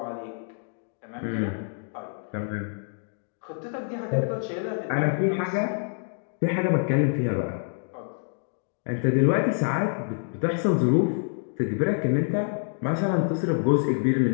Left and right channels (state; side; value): silent; right; 60 dB below the other